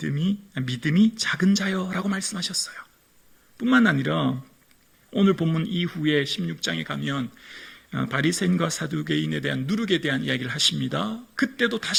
작은 자여라고 말씀하셨어요. 뿐만 아니라 오늘 본문 이후에 16장에 가면 바리새인과 사두개인에 대한 누룩에 대한 이야기를 하십니다. 그때도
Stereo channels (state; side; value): identical; both; correlation 1.00